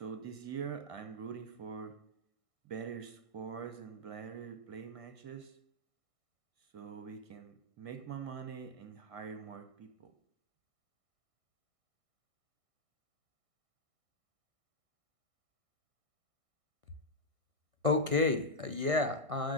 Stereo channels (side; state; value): left; late; 1.6 ms